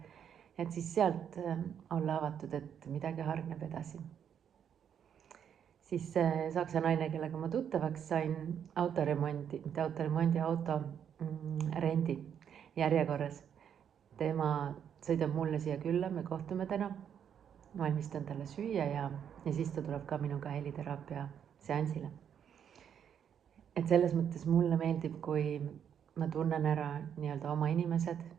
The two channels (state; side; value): quieter; left; 8.5 dB